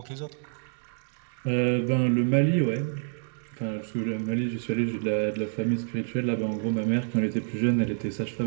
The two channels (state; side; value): silent; left; digital silence